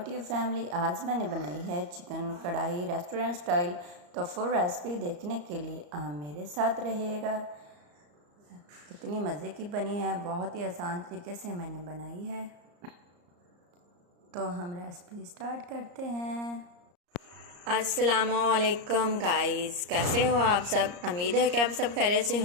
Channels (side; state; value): left; late; 34 ms